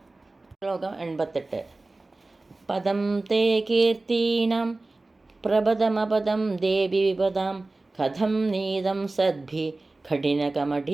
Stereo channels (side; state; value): left; quieter; 3.1 dB